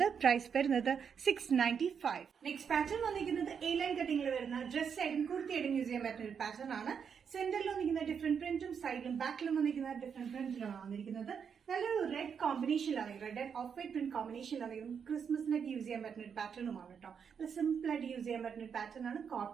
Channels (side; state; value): left; quieter; 6.9 dB